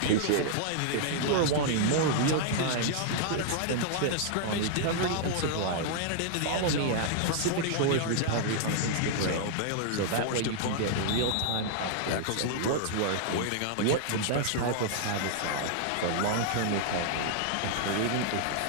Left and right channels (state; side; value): different; both; correlation -0.01